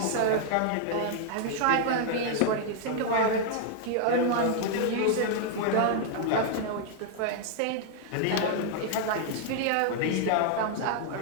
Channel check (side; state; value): both; different; correlation -0.01